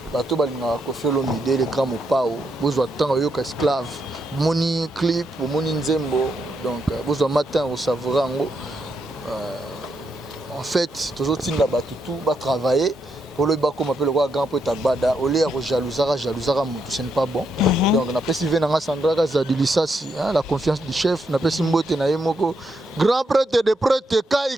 Bah tout balinga Koffi Olomide les grands mopao, besoin temps yo esclave, moni clip, moni nzembo. Donc, besoin matin au savourango. En fait, toujours tinda batutu, ba travailler. Pour le bas comme appelle le grand poète Agbada, au lieu de jalousara mutu, ce n'est pas bon. Donc, on appelle Sylvain Nanga Sandra Zadilissasi, la confiance du chef, on appelle Simbote Naemoko. Grand prêtre de prêtre,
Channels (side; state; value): both; normal; correlation 0.80